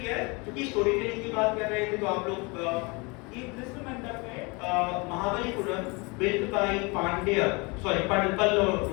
है, क्योंकि स्टोरी टेलिंग की बात कर रहे थे, तो आप लोग this मंडप है Mahabalipuram, built by Pallava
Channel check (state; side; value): quieter; right; 28.3 dB